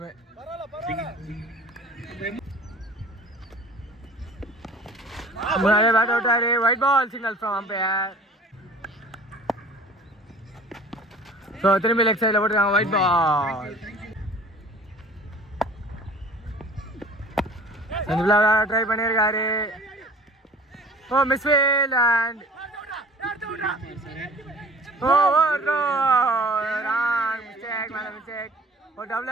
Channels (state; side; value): normal; both; correlation 0.47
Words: முன்னாடியே பேட் அவுட்டாரு. Wide ball signal from umpire. So திரும்பி லெக் சைடில் போட்டுருக்காங்க ஒயிட் பால். ட்ரை பண்ணியிருக்காரு. Oh misfield and oh no wrong mistake. ஒரு